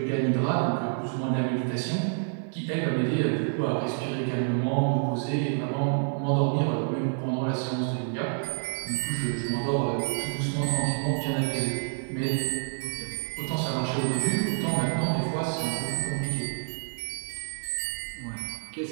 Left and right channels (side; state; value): left; silent; 59 dB below the other